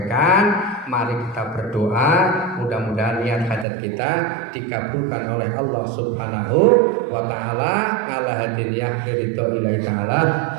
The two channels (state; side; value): drops out; left; at 3.7 s